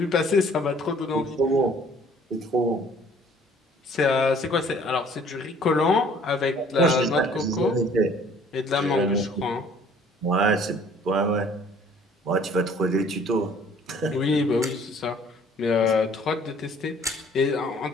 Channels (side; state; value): both; normal; correlation 0.56